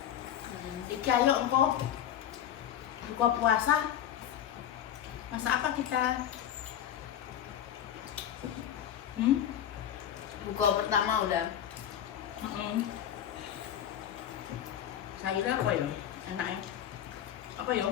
Iki ayo engko buka puasa. Masak apa kita? Buka pertama udah. Sayurnya apa ya? Enaknya? Apa ya?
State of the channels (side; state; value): right; quieter; 10.3 dB